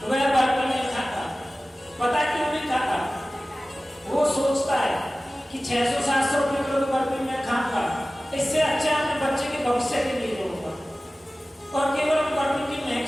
वह बर्फी नहीं खाता। पता क्यों नहीं खाता? वो सोचता है कि 600-700 रुपये किलो की बर्फी मैं खाऊंगा, इससे अच्छा अपने बच्चे के भविष्य के लिए होगा। और केवल बर्फी की महक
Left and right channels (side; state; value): both; normal; correlation 0.97